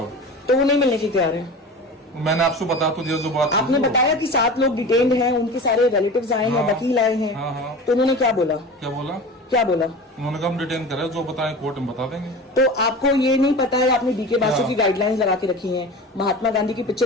तो वो नहीं मिलने की तैयार है? मैंने आपसे बता तो दिया जो बात। आपने बताया कि 7 लोग डिटेन्ड हैं, उनके सारे रिलेटिव्स आए हैं, हाँ। वकील आए हैं। हाँ, हाँ। तो उन्होंने क्या बोला? क्या बोला? क्या बोला? उन्होंने कहा हम डिटेन करे, जो बताएं कोर्ट में बता देंगे। तो आपको ये नहीं पता है, आपने डीके बासु क्या? की गाइडलाइंस लगा के रखी हैं, महात्मा गांधी की पिक्चर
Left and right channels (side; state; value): both; normal; correlation 0.34